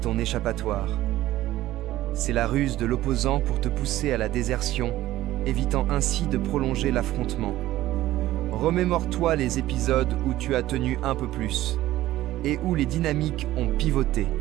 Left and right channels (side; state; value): left; quieter; 15.2 dB